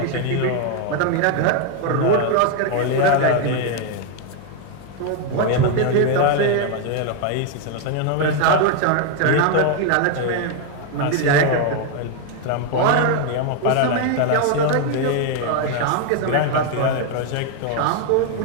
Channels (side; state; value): both; different; correlation 0.01